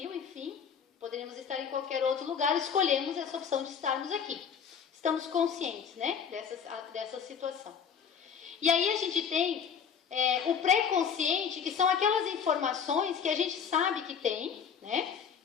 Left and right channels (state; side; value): quieter; right; 7.1 dB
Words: enfim, poderíamos estar em qualquer outro lugar, escolhemos essa opção de estarmos aqui. Estamos conscientes, dessa situação. E aí a gente tem o pré-consciente, que são aquelas informações que a gente sabe que tem,